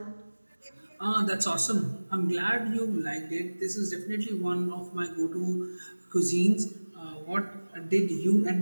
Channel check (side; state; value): both; inverted; correlation -1.00